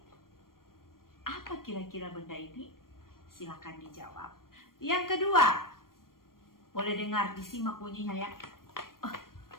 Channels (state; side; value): late; right; 0.91 ms